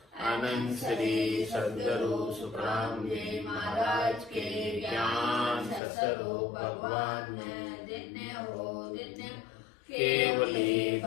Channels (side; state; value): right; drops out; at 5.8 s